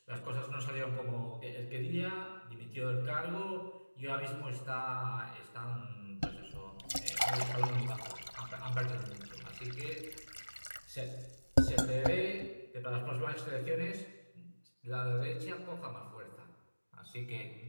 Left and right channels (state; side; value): inverted; both; correlation -1.00